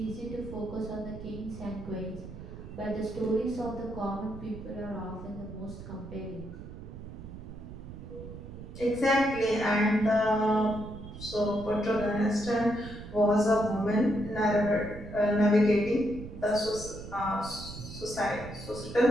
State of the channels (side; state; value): right; noise; rumble, 12 dB below the sound